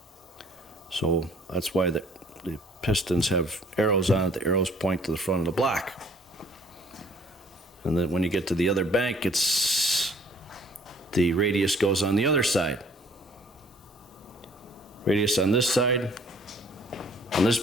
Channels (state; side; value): normal; both; correlation 0.58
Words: So that's why the pistons have arrows on it. The arrows point to the front of the block. And then when you get to the other bank, the radius goes on the other side. Radius on this side, on this